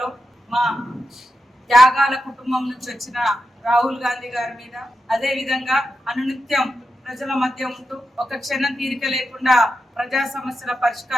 మా త్యాగాల కుటుంబం నుంచి వచ్చిన రాహుల్ గాంధీ గారి మీద, అదే విధంగా అనునిత్యం ప్రజల మధ్య ఉంటూ ఒక క్షణం తీరిక లేకుండా ప్రజా సమస్యల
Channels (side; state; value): both; normal; correlation 0.88